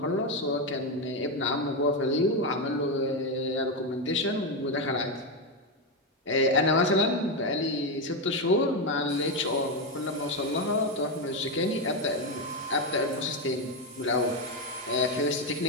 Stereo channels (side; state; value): both; normal; correlation 0.08